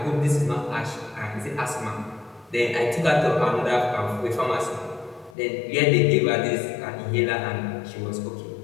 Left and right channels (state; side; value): drops out; right; at 5.4 s